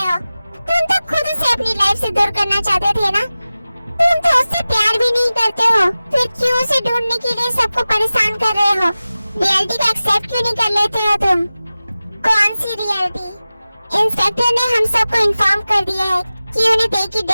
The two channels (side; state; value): both; inverted; correlation -0.96